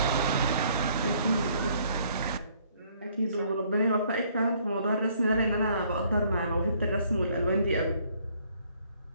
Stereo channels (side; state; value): both; inverted; correlation -0.64